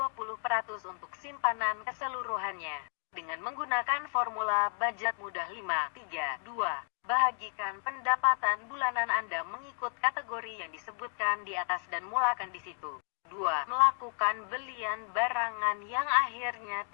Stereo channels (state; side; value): silent; right; 56 dB below the other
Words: untuk simpanan keseluruhannya. Dengan menggunakan formula budget mudah 5, 3, 2, bahagikan pendapatan bulanan Anda mengikut kategori yang disebutkan di atas dan mulakan di situ. 2. Melakukan belian barangan yang akhirnya